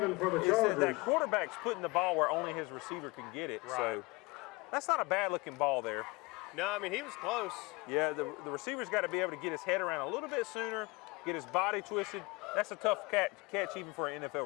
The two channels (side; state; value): right; quieter; 25.5 dB